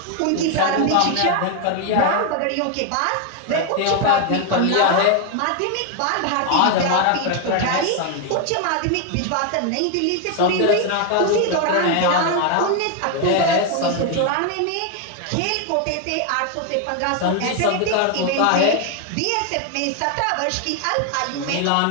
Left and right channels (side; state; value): both; different; correlation 0.01